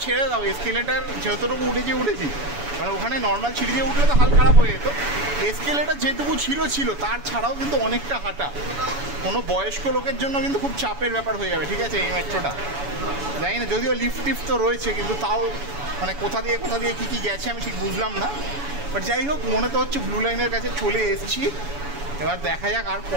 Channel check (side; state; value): left; late; 7.0 ms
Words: ছেড়ে দাও, এসকেলেটার যতটুকু উঠেছি, মানে ওখানে নর্মাল সিঁড়ি দিয়ে উঠলে তো হাল খারাপ হয়ে যেত, এসকেলেটার যেটুকু ছিল তার ছাড়াও কিন্তু অনেকটা হাঁটা, কোনো বয়স্ক লোকের জন্য কিন্তু খুব চাপের ব্যাপার হয়ে যাবে, ঠিক আছে, এই মেট্রোটা। জানি না, যদিও লিফট তো রয়েছে, কিন্তু তাও মানে কোথা দিয়ে কী গেছে আমি ঠিক বুঝলাম না। বাট যাই হোক, মনে তো হচ্ছে ব্লু লাইনের কাছে চলে এসেছি। এবার দেখা যাক আর